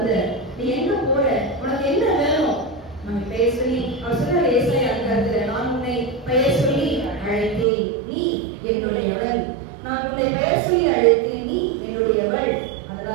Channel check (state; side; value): drops out; left; at 7.7 s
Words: நீ எங்க போற, உனக்கு என்ன வேணும், நம்ம பெயர் சொல்லி அவர் சொல்றாரு ஏசாயா அதிகாரத்துல, நான் உன்னை பெயர் சொல்லி அழைத்தேன், நீ என்னுடையவள், நான் உன்னை பெயர் சொல்லி அழைத்தேன், நீ என்னுடையவள்.